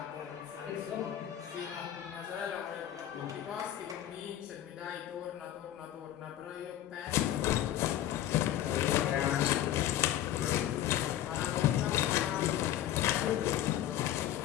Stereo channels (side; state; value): right; quieter; 12.1 dB